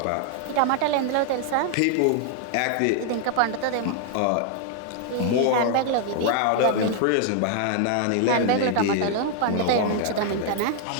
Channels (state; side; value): different; both; correlation 0.00